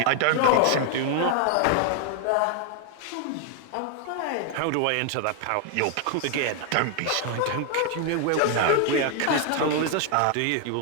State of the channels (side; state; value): both; different; correlation 0.00